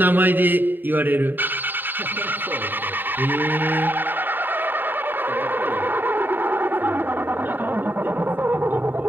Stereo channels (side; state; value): left; late; 0.092 ms